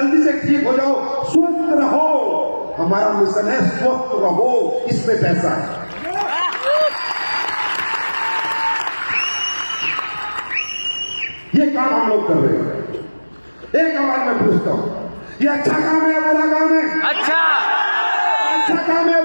से ठीक हो जाओ, स्वस्थ रहो। हमारा मिशन है स्वस्थ रहो, इसमें पैसा है। ये काम हम लोग कर रहे हैं। एक आवाज में पूछता हूं, ये अच्छा काम है या बुरा काम है? अच्छा काम है,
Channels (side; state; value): both; inverted; correlation -1.00